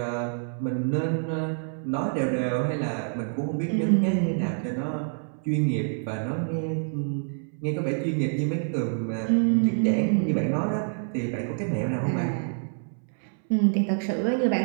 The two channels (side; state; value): left; silent; 60 dB below the other